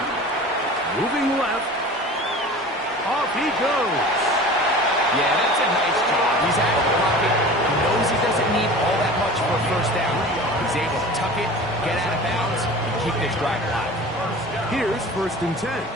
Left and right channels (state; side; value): normal; both; correlation 0.39